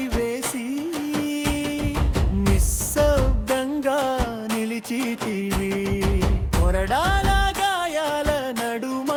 వేసి నిశ్శబ్దంగా నిలిచితివి. కొరడాల గాయాల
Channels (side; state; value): both; identical; correlation 1.00